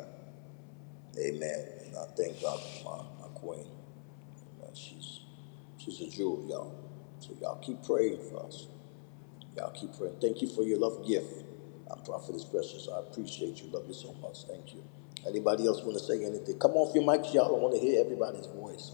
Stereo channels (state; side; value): silent; right; 53 dB below the other